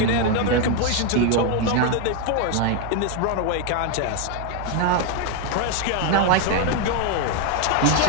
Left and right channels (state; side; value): different; both; correlation 0.01